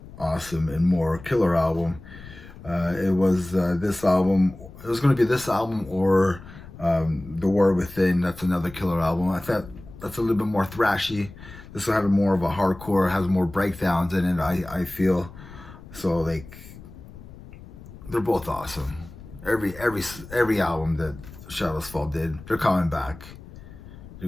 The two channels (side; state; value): left; noise; rumble, 17 dB below the sound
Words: awesome, and more. Killer album. It was this album. It was going to be this album or The War Within. That's another killer album. I thought that's a little bit more thrashy. This one had more of a hardcore, has more breakdowns in it, I feel. So like, they're both awesome. Every album that Shadows Fall did, they're coming back. They're